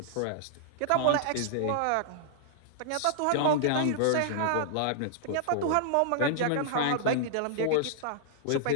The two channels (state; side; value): different; both; correlation -0.01